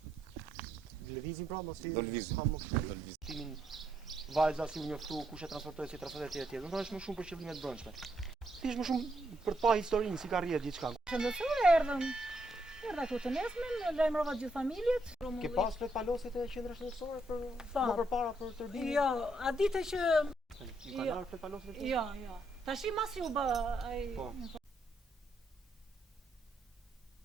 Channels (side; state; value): both; normal; correlation 0.76